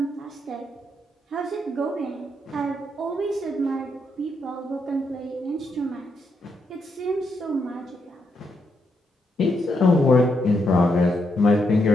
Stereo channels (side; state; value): both; normal; correlation 0.79